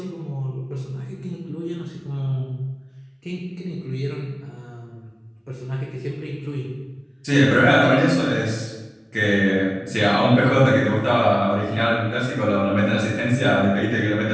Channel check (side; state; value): both; identical; correlation 1.00